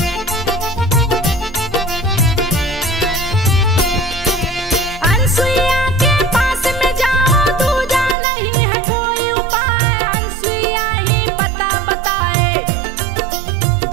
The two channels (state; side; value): drops out; left; at 8.2 s